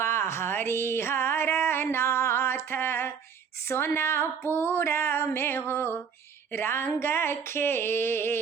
हरिहर नाथ सोनापुर में हो रंग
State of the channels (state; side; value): quieter; left; 6.7 dB